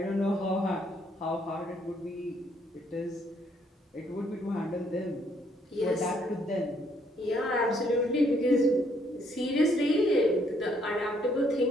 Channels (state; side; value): normal; both; correlation 0.68